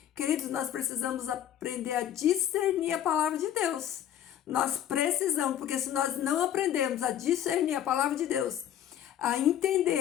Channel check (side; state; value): right; quieter; 10.7 dB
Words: Queridos, nós precisamos aprender a discernir a palavra de Deus. Nós precisamos, porque se nós não aprendermos a discernir a palavra de Deus, a